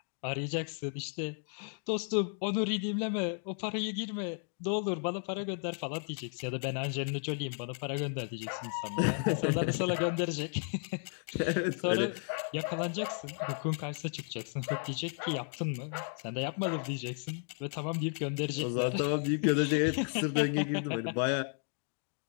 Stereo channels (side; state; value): right; silent; 55 dB below the other